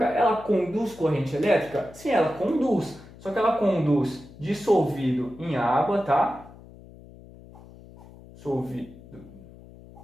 ela conduz corrente elétrica? Sim, ela conduz, só que ela conduz dissolvido em água, tá? Dissolvido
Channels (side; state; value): left; noise; hum, 20 dB below the sound